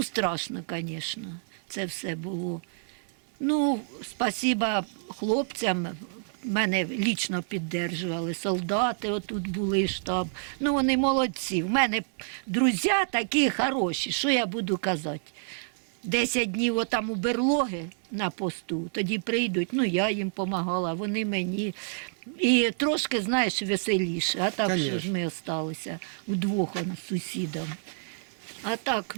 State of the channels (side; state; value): left; silent; digital silence